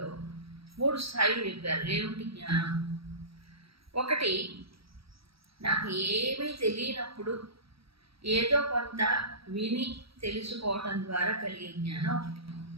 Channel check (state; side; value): late; left; 0.76 ms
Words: 3 స్థాయిలు చెప్పారు. ఏమిటి జ్ఞానం? ఒకటి, నాకు ఏమీ తెలియనప్పుడు ఏదో కొంత విని తెలుసుకోవటం ద్వారా కలిగే జ్ఞానం ఒకటి.